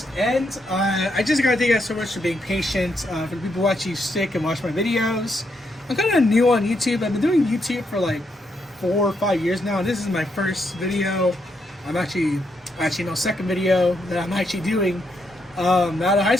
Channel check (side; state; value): both; normal; correlation 0.78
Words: end, I just gotta thank you guys so much for being patient, for the people who actually stick and watch my videos. I'm kind of new on YouTube. I've been doing YouTube for like 4 or 5 years now, and this is my first video. I'm actually no, second video that I'm actually doing out of high